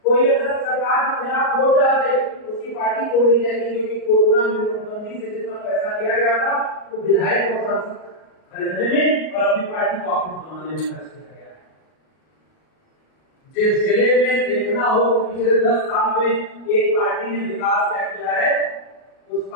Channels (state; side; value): late; right; 38 ms